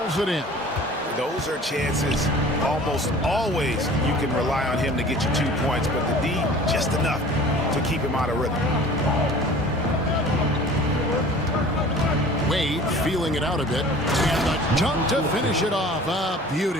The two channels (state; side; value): normal; both; correlation 0.45